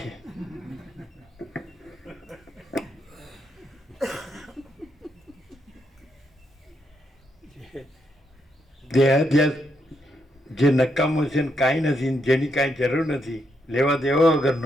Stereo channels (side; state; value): both; normal; correlation 0.79